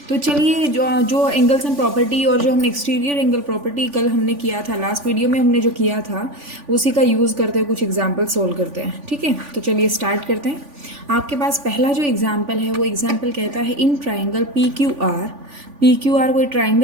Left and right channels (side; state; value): left; late; 3.5 ms